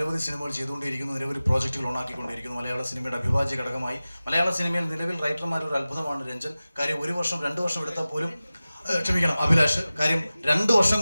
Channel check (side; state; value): both; inverted; correlation -0.97